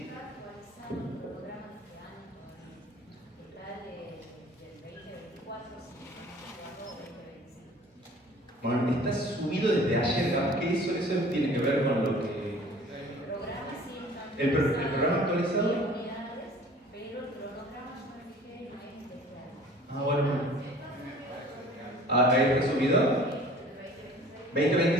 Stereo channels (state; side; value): normal; both; correlation 0.48